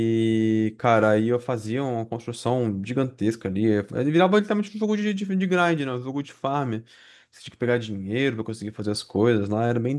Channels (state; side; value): identical; both; correlation 1.00